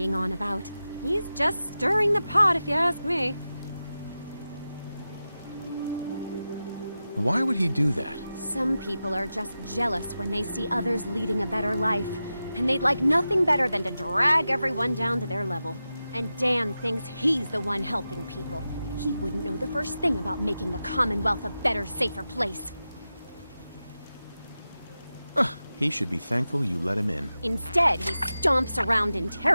on about. He's just stirring the pot, if you ask me. Why would he do that? Some people are just jealous when they see others leading a better life. and they'd like nothing better than to drag everyone down to their level. And Dan thinks he's the one helping people. He wouldn't know the first thing about making the Commonwealth a better, safer place. He should be thankful you let him in. Instead, he stomps around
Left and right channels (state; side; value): inverted; both; correlation -0.92